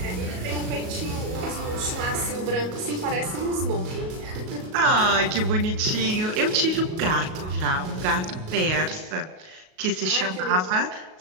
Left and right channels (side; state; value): left; late; 37 ms